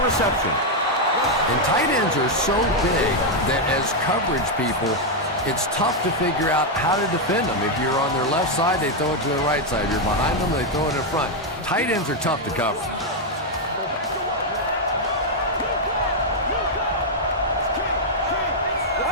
reception. And tight ends are so big that as coverage people, it's tough to figure out how to defend them. If you're on their left side, they throw it to the right side. If you're behind them, they throw it in front. Tight ends are tough to cover.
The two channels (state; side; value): normal; both; correlation 0.00